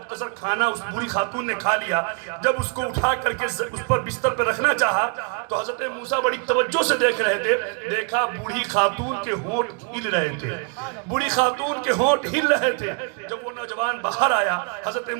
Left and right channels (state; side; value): quieter; left; 37.4 dB